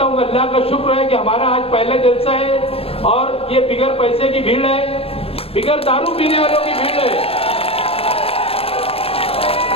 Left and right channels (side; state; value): right; late; 0.28 ms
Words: हूँ अल्लाह का शुक्र है कि हमारा आज पहला जलसा है और ये बिगर पैसे की भीड़ है, बिगर दारू पीने वालों की भीड़ है